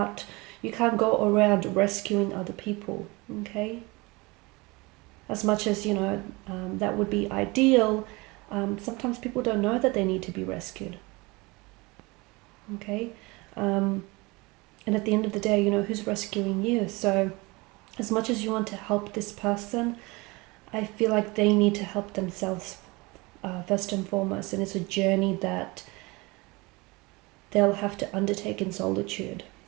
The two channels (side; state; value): left; quieter; 24.6 dB